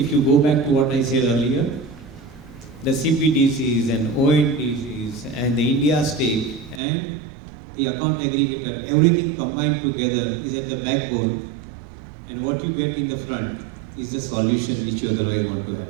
you go back to what I said earlier, the CPDCs and ONDCs and the India stake and the account aggregator, everything combined together is at the backbone, and what you get in the front is the solution which you otherwise want to have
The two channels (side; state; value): left; drops out; at 6.8 s